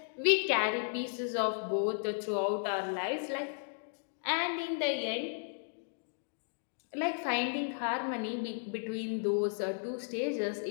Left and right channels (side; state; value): right; silent; digital silence